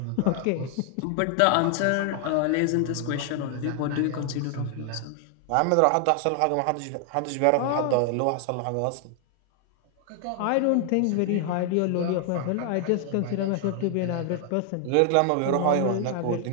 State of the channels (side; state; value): both; different; correlation 0.00